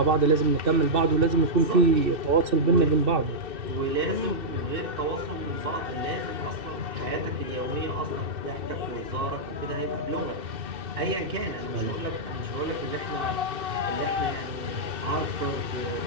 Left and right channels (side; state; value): left; late; 2.6 ms